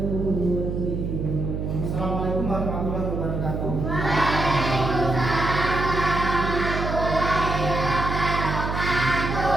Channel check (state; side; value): noise; right; hum, 3 dB below the sound